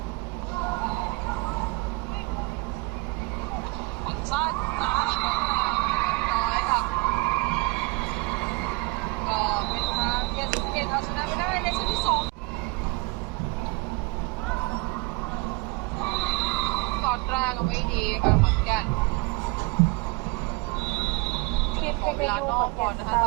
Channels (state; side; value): quieter; left; 25.3 dB